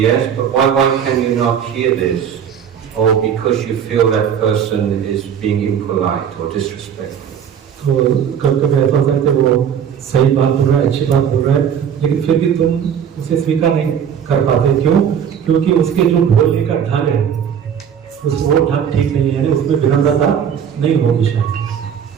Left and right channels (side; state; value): left; quieter; 8.3 dB